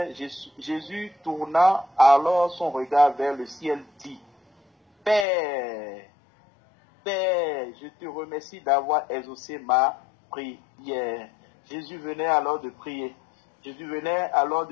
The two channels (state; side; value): drops out; right; at 5.2 s